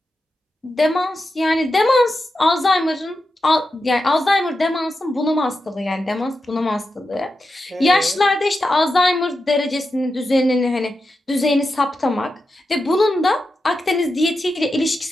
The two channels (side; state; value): both; normal; correlation 0.89